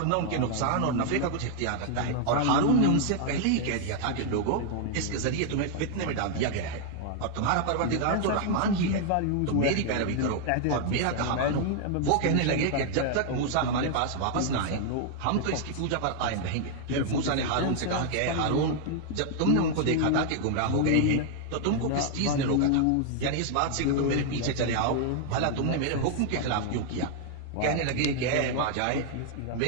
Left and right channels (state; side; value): different; both; correlation 0.00